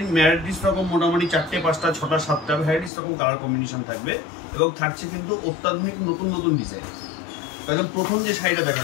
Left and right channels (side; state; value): right; drops out; at 2.9 s